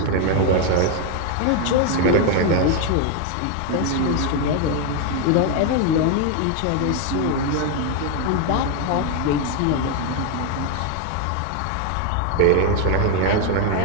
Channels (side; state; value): both; different; correlation 0.01